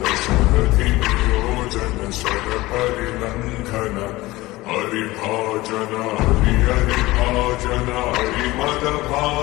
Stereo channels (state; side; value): quieter; right; 19.4 dB